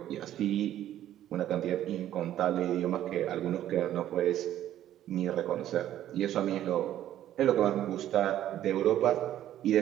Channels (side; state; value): left; quieter; 12.2 dB